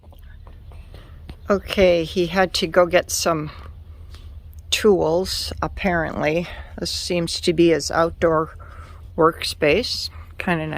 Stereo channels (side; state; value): both; identical; correlation 1.00